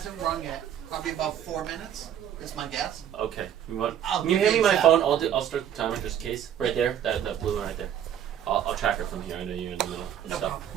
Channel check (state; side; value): quieter; left; 10.0 dB